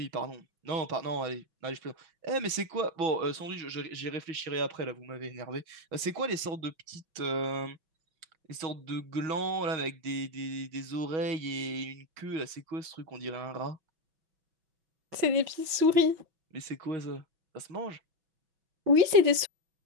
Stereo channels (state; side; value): late; left; 6.3 ms